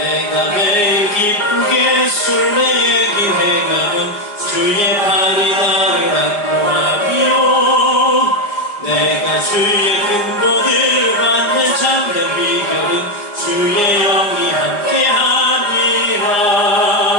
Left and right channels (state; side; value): late; right; 4.8 ms